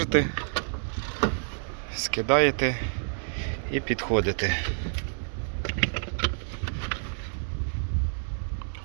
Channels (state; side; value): silent; left; digital silence